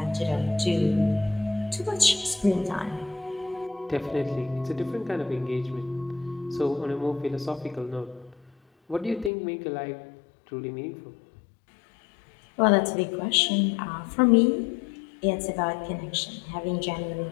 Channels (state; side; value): drops out; right; at 9.3 s